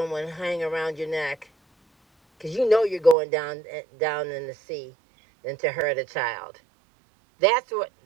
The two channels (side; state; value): left; drops out; at 3.2 s